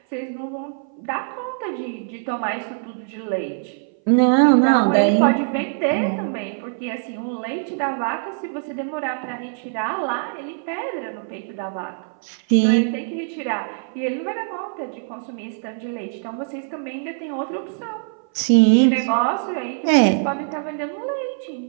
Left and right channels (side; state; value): left; silent; 57 dB below the other